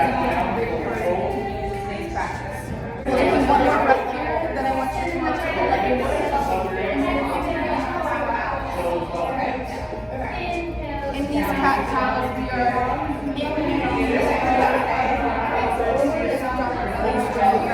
a great word to use in today's practice. Taking one more breath here, then I want you to let yourself in these cat cows, we are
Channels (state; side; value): identical; both; correlation 1.00